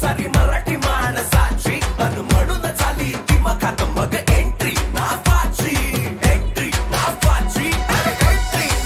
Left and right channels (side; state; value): both; identical; correlation 1.00